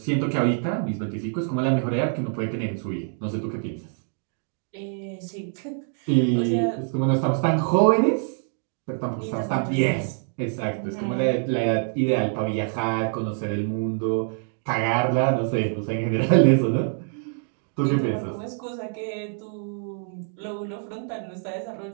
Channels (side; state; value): left; silent; 57 dB below the other